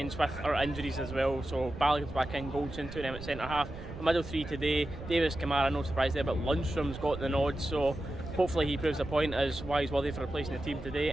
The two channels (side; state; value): right; noise; rumble, 11 dB below the sound